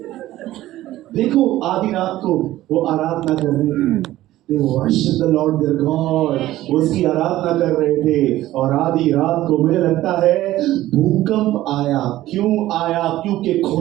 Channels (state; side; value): quieter; left; 15.2 dB